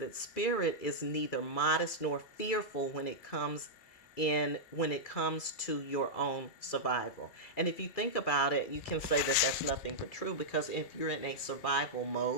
spirit is neither modest nor fearful when it comes in when it comes to your own survival. And if you think about it, you can say that that's nothing but true, because if you're in a survival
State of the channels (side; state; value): right; late; 2.4 ms